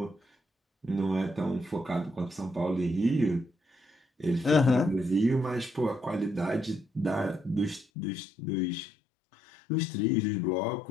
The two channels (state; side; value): drops out; right; at 7.9 s